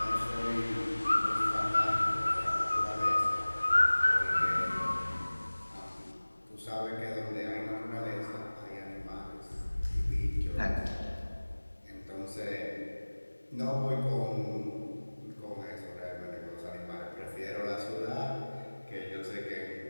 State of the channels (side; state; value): both; inverted; correlation -1.00